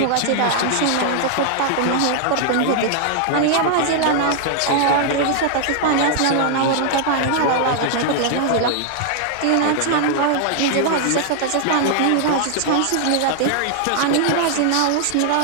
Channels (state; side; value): different; both; correlation 0.00